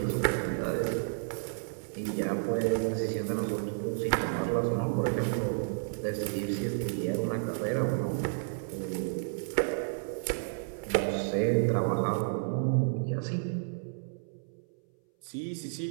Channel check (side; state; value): left; silent; 57 dB below the other